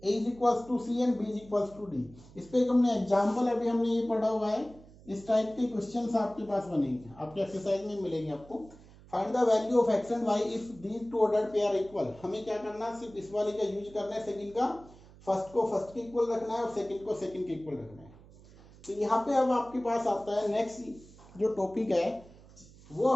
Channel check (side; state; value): right; noise; hum, 22 dB below the sound